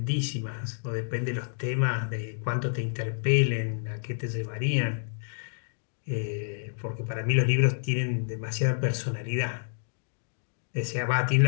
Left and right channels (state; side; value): silent; right; digital silence